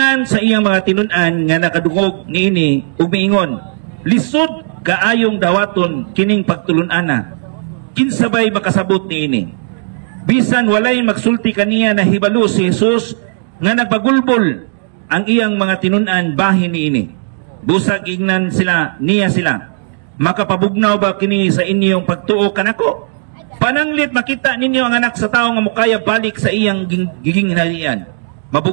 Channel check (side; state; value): left; silent; 65 dB below the other